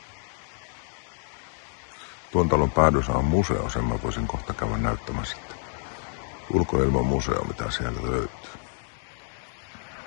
Tuon talon päädyssä on museo, sen mä voisin kohta käydä näyttämässä sitten. Ulkoilman museo, mitä siellä löytyy.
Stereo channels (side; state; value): right; silent; 60 dB below the other